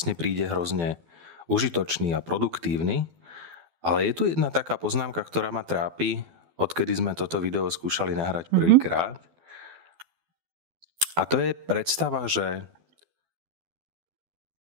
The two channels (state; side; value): late; left; 12 ms